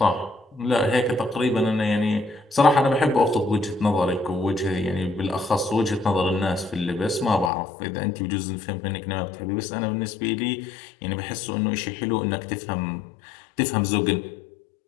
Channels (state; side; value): drops out; right; at 7.5 s